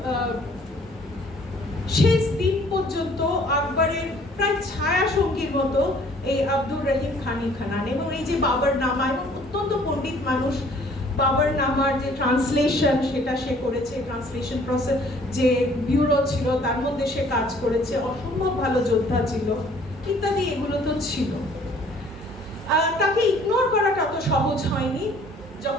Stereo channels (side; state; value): both; normal; correlation 0.57